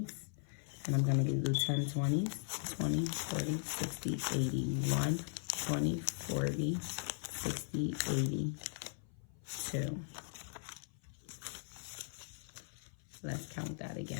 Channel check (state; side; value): silent; right; 52 dB below the other